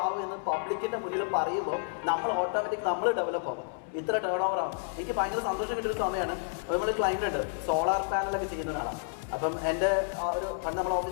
ആവും എന്ന് പബ്ലിക്കിന്റെ മുന്നിൽ പറയുമ്പോൾ നമ്മൾ ഓട്ടോമാറ്റിക് നമ്മൾ ഡെവലപ്പ് ആവും. ഇത്ര ടേൺ ഓവർ ആവും. എനിക്ക് ഭയങ്കര സന്തോഷം കിട്ടിയൊരു സമയമാണ്. നമ്മൾ ക്ലൈന്റ് ഉണ്ട്, സോളാർ പാനലൊക്കെ ചെയ്യുന്ന ഒരാളാണ്. അപ്പം എൻ്റെ ഒരു പണ്ട് നമ്മുടെ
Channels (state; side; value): silent; right; 58 dB below the other